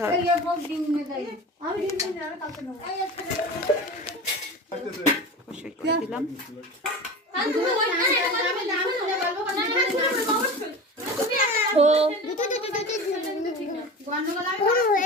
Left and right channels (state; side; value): normal; both; correlation 0.32